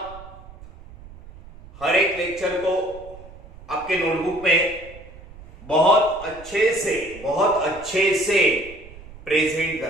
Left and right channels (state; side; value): noise; right; rumble, 19 dB below the sound